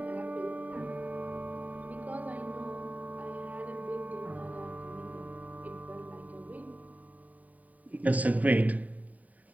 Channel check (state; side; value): late; left; 0.073 ms